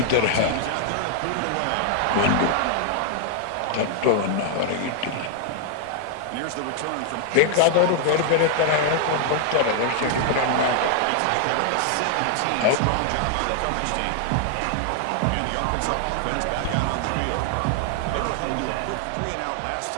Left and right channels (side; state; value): both; different; correlation 0.00